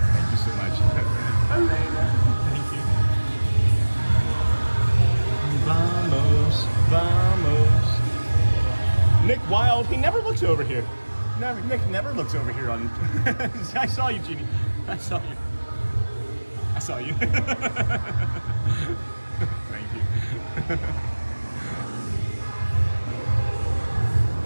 you so much. Thank you. Vamos, vamos. Nick Wild, he never looks over here. Nick never looks over here on. I saw you, Jeannie. I saw you. Thank you.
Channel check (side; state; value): both; inverted; correlation -1.00